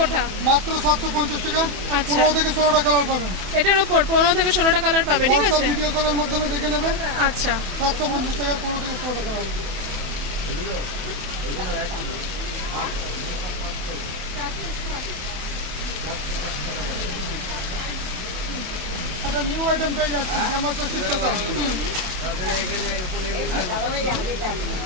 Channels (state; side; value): late; left; 27 ms